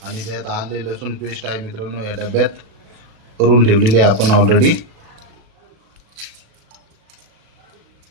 आणि त्यात आले लसूण पेस्ट आहे मित्रांनो, या डब्यात करून ठेवलेली आहे आपण ऑलरेडी।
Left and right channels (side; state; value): left; late; 37 ms